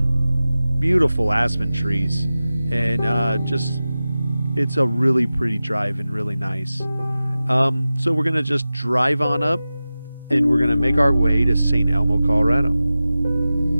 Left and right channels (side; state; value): both; inverted; correlation -0.94